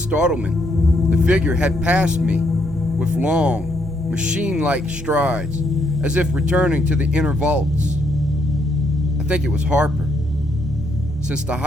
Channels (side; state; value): both; normal; correlation 0.74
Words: the figure had passed me with long, machine-like strides, as if returning to the inner vaults. I think it was Harper, since the